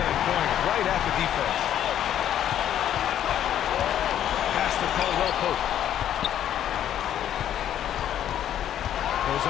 right at the defense. Pass to Caldwell Pope. Goes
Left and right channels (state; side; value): quieter; right; 10.7 dB